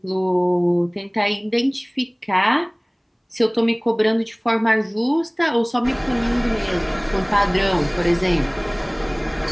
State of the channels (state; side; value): identical; both; correlation 1.00